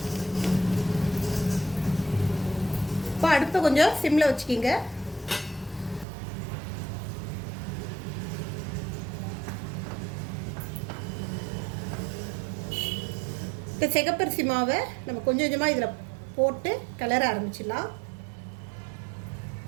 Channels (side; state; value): left; drops out; at 6.1 s